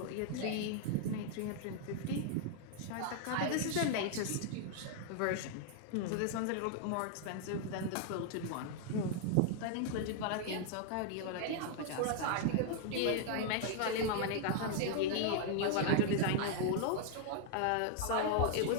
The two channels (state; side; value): different; both; correlation 0.00